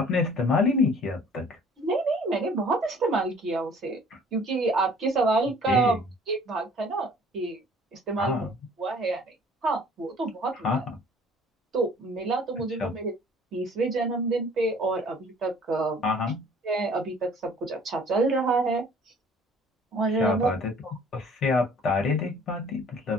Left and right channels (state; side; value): normal; both; correlation 0.53